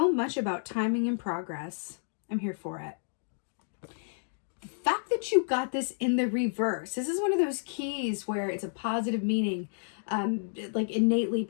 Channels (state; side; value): silent; right; digital silence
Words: much about timing and progress? I'm here for it. The fact that you got this in the reverse, this is one of those keys where it's a positive meaning, like innately